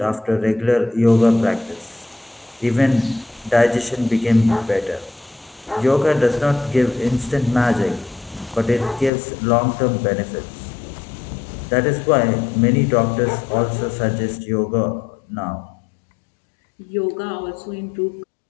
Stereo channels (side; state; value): right; drops out; at 9.1 s